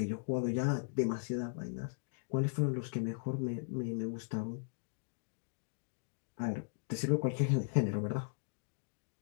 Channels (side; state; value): right; silent; digital silence